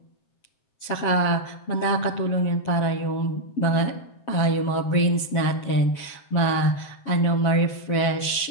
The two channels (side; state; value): right; late; 7.5 ms